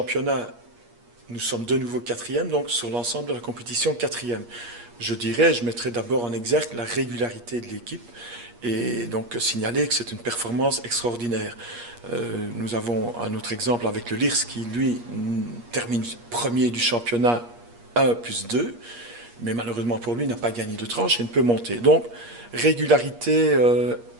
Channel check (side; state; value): left; late; 8.5 ms